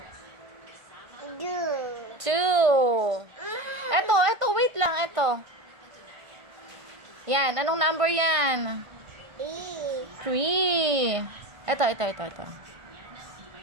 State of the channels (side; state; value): left; late; 1.5 ms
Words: Two. 2. Eto, wait lang, eto. Yan, anong number yan? Three. 3. Eto.